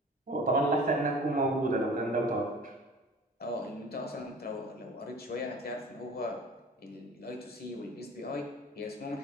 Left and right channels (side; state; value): both; normal; correlation 0.44